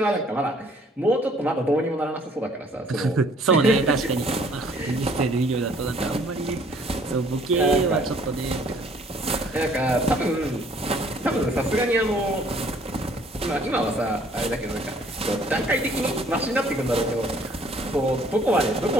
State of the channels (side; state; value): both; normal; correlation 0.59